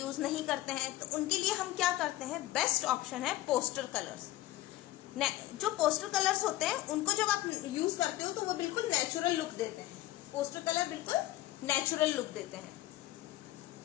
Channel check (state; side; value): quieter; right; 16.2 dB